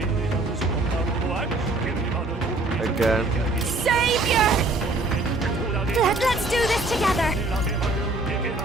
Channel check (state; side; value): quieter; left; 3.0 dB